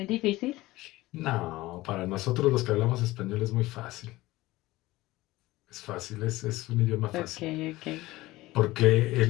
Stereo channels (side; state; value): right; quieter; 18.6 dB